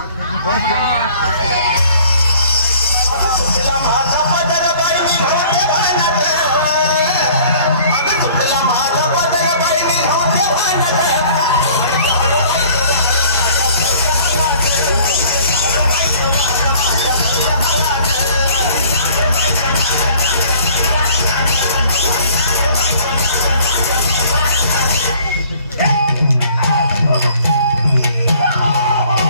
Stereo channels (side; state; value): both; inverted; correlation -0.53